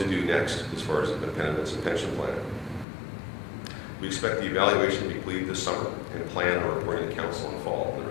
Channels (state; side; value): drops out; right; at 2.9 s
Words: do next as far as the benefits and pension plan. We expect the evaluation to be completed this summer and plan on reporting to council in fall on the